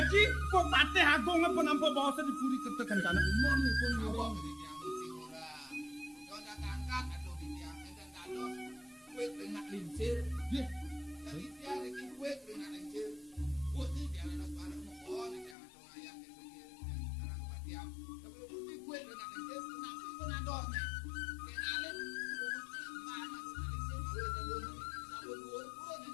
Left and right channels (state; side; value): drops out; right; at 15.6 s